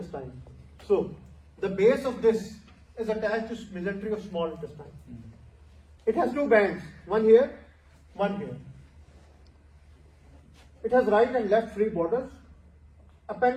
So the base of this is attached to mesentery of small intestine. It has 2 bands, one here, one here. It has right and left free borders.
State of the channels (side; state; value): both; identical; correlation 1.00